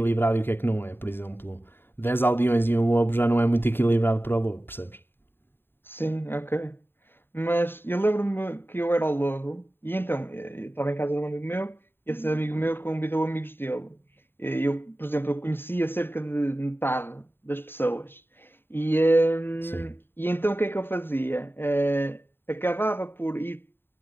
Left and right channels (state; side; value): late; right; 0.10 ms